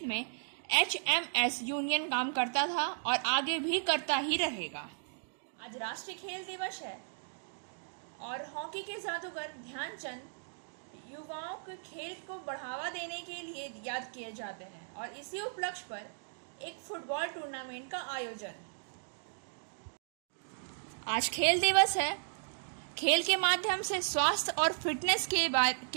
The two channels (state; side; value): silent; left; digital silence